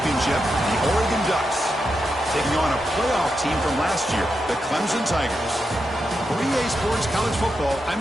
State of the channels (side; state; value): both; normal; correlation 0.86